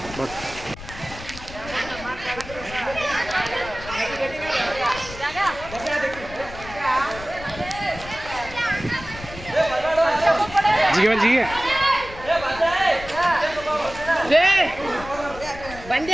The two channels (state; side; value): noise; left; rumble, 14 dB below the sound